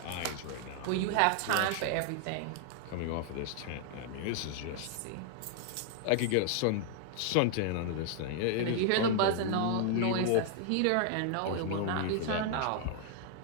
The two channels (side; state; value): both; different; correlation 0.00